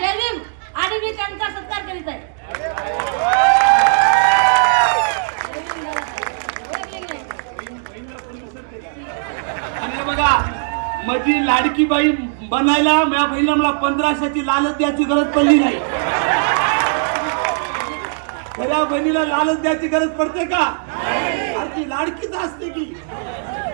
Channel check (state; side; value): silent; left; digital silence